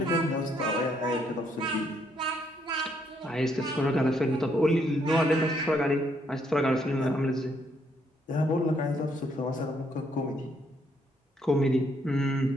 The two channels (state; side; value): normal; both; correlation 0.72